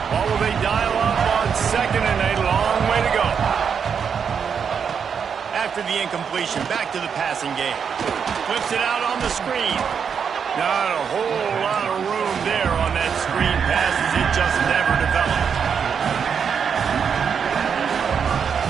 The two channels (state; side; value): quieter; left; 6.9 dB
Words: Or will they dial up on 2nd and a long way to go? After the incompletion, back to the passing game. Flips it out on the screen. Not a whole lot of room there on that screen pass as it just never developed.